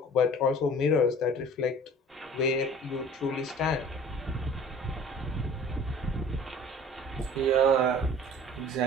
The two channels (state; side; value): normal; both; correlation 0.46